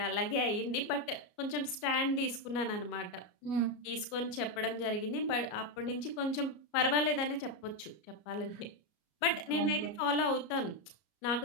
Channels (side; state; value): right; late; 33 ms